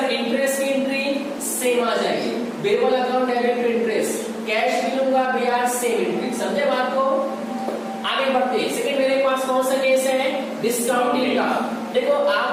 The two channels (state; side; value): identical; both; correlation 1.00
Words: इंटरेस्ट की एंट्री सेम आ जाएगी। Birbal account debit to interest, cash भी लूंगा ब्याज सेम एंट्री। समझे बात को? आगे बढ़ते हैं। सेकंड मेरे पास कौन सा केस है? डिस्काउंटिंग का। देखो